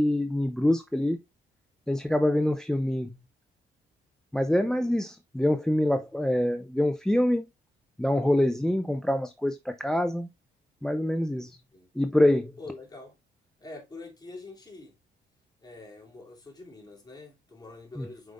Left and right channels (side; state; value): both; normal; correlation 0.97